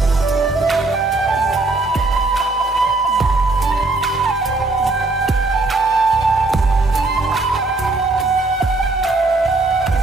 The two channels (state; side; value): quieter; left; 3.2 dB